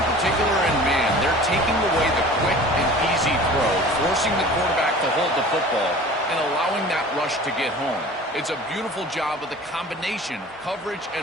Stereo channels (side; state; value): both; normal; correlation 0.43